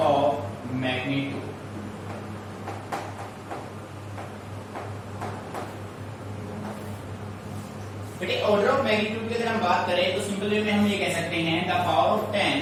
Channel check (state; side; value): identical; both; correlation 1.00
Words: magnitude. बेटे order of magnitude की अगर हम बात करें तो simple way में हम ये कह सकते हैं the